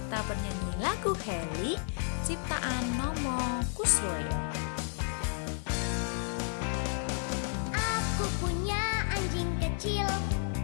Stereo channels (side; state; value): right; silent; 56 dB below the other